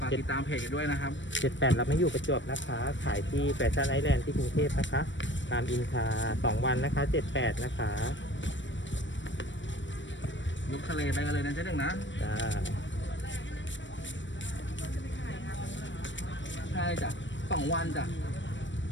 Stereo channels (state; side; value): late; right; 0.54 ms